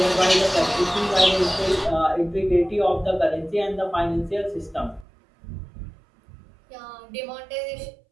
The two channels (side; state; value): left; drops out; at 5.1 s